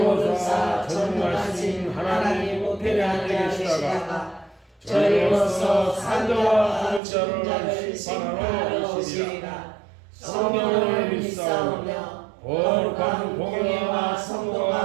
전능하신 하나님 우편에 앉아 계시다가 저희로서 산자와 죽은 자를 심판하러 오시리라. 성령을 믿사오며 거룩한 공예와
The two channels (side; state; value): left; drops out; at 7.0 s